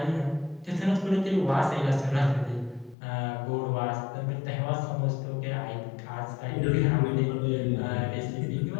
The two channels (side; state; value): right; drops out; at 3.0 s